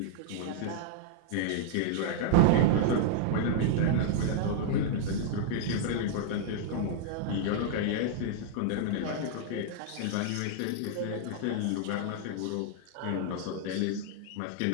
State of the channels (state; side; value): different; both; correlation -0.01